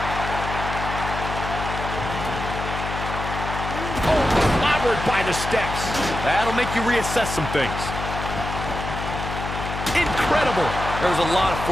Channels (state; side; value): noise; left; hum, 6 dB below the sound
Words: Oh, clobbered by the steps. That'll make you reassess some things. Incredible. There was a lot of